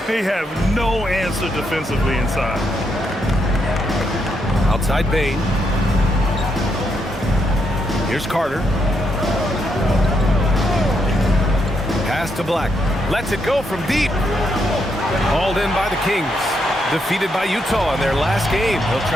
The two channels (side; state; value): both; normal; correlation 0.79